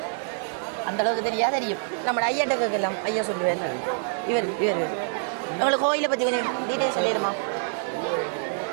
அந்த அளவுக்கு தெரியும். நம்ம ஐயாட்ட கேட்கலாம், ஐயா சொல்லுவார். இவர் உங்களுக்கு கோயிலை பற்றி கொஞ்சம் டீட்டெயில் சொல்லிடுமா?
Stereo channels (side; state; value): left; silent; digital silence